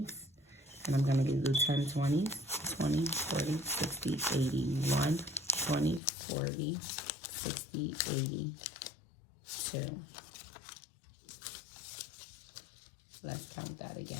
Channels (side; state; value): right; drops out; at 6.0 s